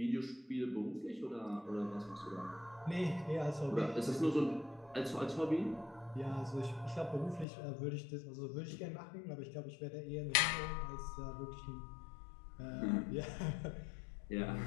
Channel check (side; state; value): right; drops out; at 7.5 s